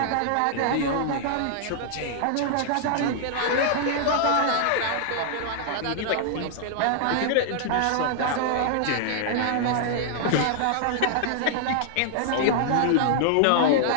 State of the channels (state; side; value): different; both; correlation -0.01